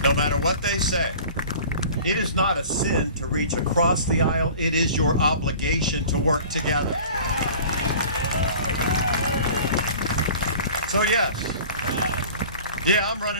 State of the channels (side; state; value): both; inverted; correlation -0.43